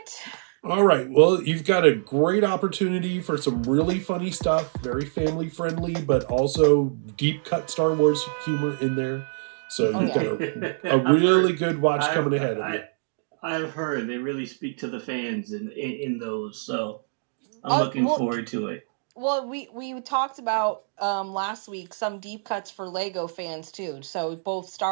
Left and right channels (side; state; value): left; silent; digital silence